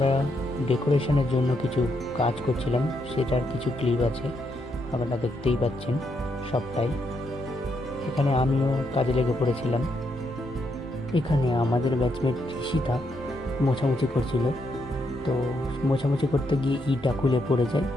ডেকোরেশনের জন্য কিছু কাজ করছিলাম, সেটার কিছু ক্লিপ আছে, আপনারা দেখতেই পাচ্ছেন সবটাই। এখানে আমিও কাজে লেগে পড়েছিলাম। এখানে আমাদের ব্যাচমেট ঋষিতা মোছামুছি করছিল, তো মোছামুছি করতে গিয়ে ইটা খুলে পড়ে যায়,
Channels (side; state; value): both; normal; correlation 0.78